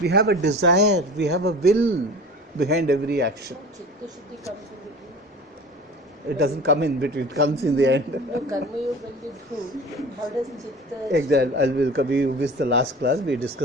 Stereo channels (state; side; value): normal; both; correlation 0.39